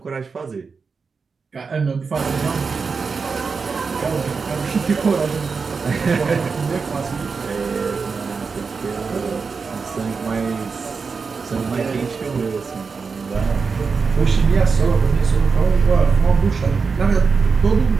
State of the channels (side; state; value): left; quieter; 5.0 dB